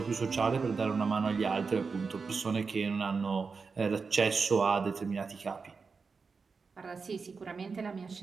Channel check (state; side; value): quieter; left; 4.9 dB